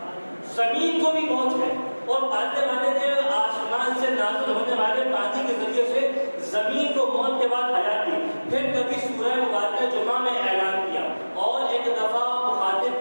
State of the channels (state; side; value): inverted; both; correlation -1.00